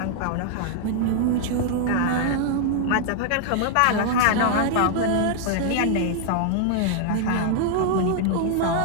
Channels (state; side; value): different; both; correlation 0.00